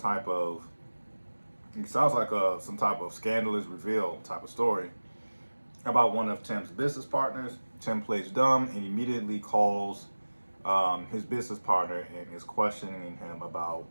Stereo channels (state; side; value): inverted; both; correlation -1.00